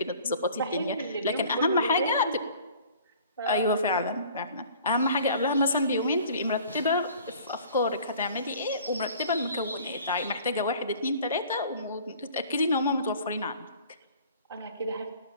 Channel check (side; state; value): both; inverted; correlation -0.49